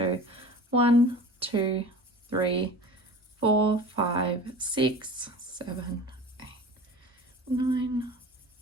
1, 2, 3, 4, 5, 6, 7, 8, 9,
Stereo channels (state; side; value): normal; both; correlation 0.38